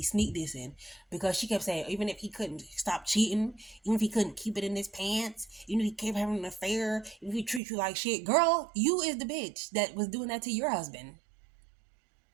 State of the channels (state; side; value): drops out; left; at 7.6 s